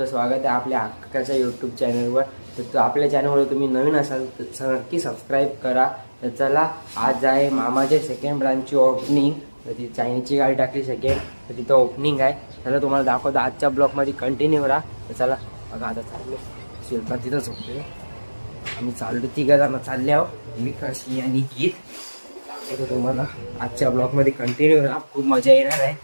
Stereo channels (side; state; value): both; inverted; correlation -1.00